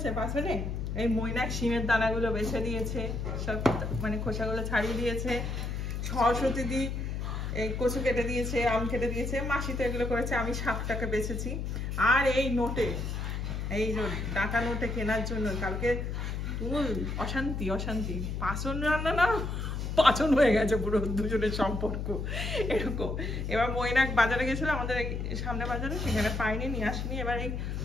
পাচনে এই মৈনাক শিমের দানাগুলো বেছে দিয়েছে, সব মানে খোসাগুলো ছাড়িয়ে দিয়েছে। সরস্বতী দি এই কচু কেটে দিয়েছে, আম কেটে দিয়েছে, মাসি তো এগুলো করেছে, আমি শাকটাকে বেছেছি। আর এই নোটে, এই যে টাকা নোটে কেনার জন্য কালকে অশান্তি অশান্তি, পাচন রান্না না পাচন হয়ে গেছে পুরো দুজনের সম্পর্ক এরকম। এবার মৈনাক বাজারে গেছিল আমাদের সামনে বাজারে, সেখানে পাইনি, নিয়ে আসিনি। এবার এই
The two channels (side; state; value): left; noise; hum, 3 dB below the sound